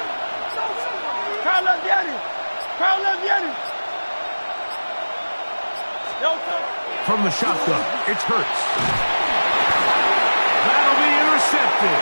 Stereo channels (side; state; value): both; inverted; correlation -1.00